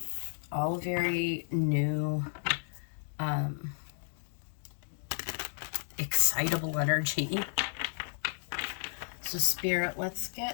all very new, excitable energy. So Spirit, let's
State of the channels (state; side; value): silent; right; digital silence